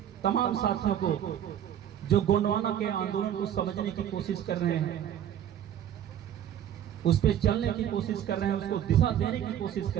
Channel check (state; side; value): quieter; left; 10.3 dB